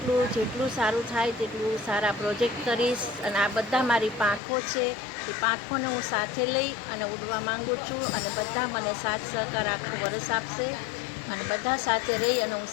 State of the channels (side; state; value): right; drops out; at 4.4 s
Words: જેટલું સારું થાય તેટલું સારા પ્રોજેક્ટ કરીશ. અને આ બધા મારી પાંખો છે, એ પાંખોને હું સાથે લઈ અને ઉડવા માગું છું. અને બધા મને સાથ સહકાર આખું વરસ આપશે અને બધા સાથે રહી અને હું